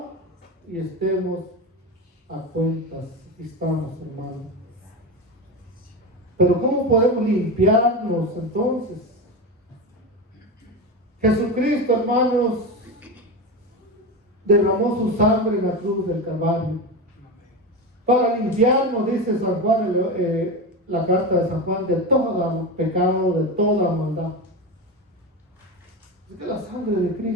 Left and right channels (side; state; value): both; normal; correlation 0.20